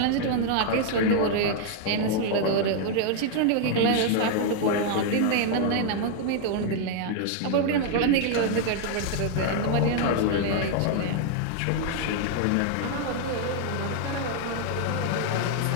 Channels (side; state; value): both; different; correlation 0.00